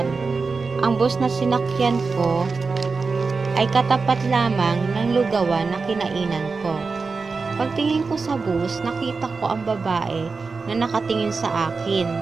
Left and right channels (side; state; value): left; quieter; 4.4 dB